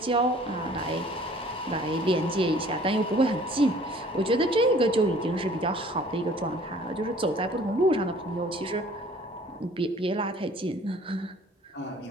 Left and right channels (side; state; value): both; normal; correlation 0.53